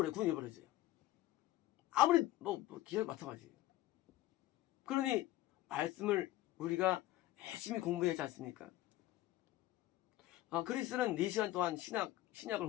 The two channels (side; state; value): right; quieter; 15.8 dB